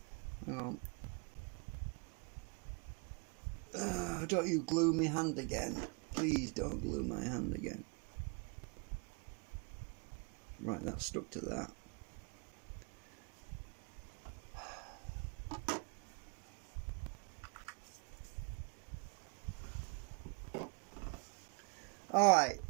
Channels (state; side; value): quieter; left; 32.5 dB